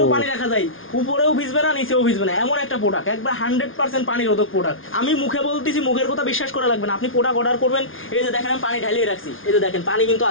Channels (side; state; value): right; late; 0.58 ms